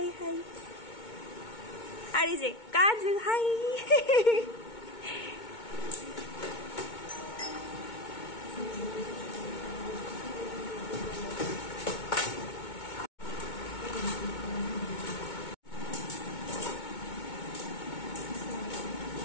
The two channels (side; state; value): right; late; 2.2 ms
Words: hi. আর এই যে কাজ, হাই।